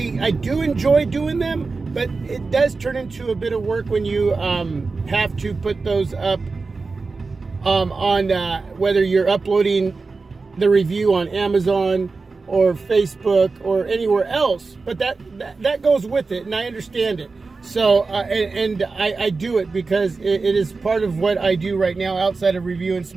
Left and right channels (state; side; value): quieter; left; 4.1 dB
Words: do enjoy doing them, but it does turn into a bit of work when you have to put those up on whether you're uploading the review on Amazon or Facebook or anywhere else. But that goes with it, and I understand it. So and I do it because it is part of what I do right now outside of reviewing